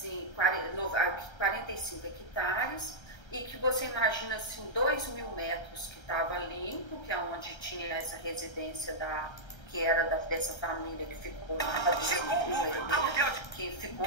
45 hectares, e que você imagina assim, 2.000 metros que estava limpo, que é onde tinha essa residência que era dessa família que ficou lá, que ficou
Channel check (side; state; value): right; late; 1.3 ms